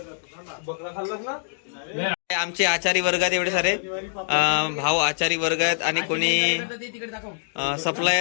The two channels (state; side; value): silent; right; digital silence